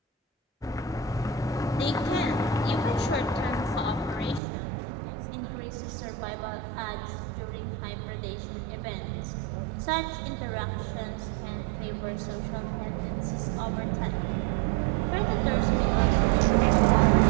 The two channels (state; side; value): drops out; left; at 4.4 s